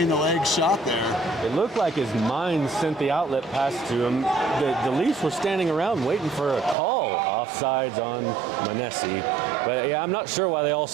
the legs shot there. It looked like his mind sent the outlet pass to him. The Leafs were standing around waiting for a call offsides on Manesi. But yeah, I'm not sure why they all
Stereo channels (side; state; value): left; drops out; at 6.8 s